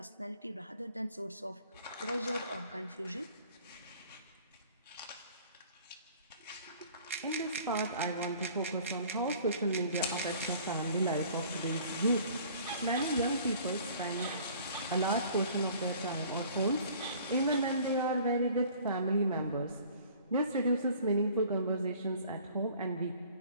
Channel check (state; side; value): inverted; both; correlation -0.51